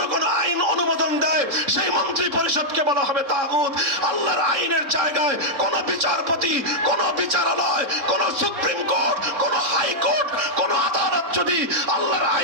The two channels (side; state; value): left; late; 3.7 ms